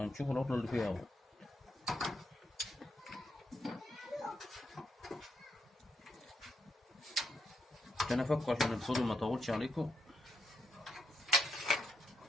العطلة اللي فيها أول. عشان أفكه عشان الفيديو ما يطولش عليكم.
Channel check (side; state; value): both; normal; correlation 0.80